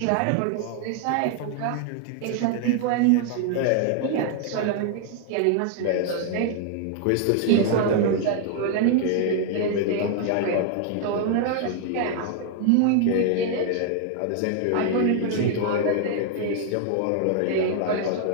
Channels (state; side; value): different; both; correlation 0.00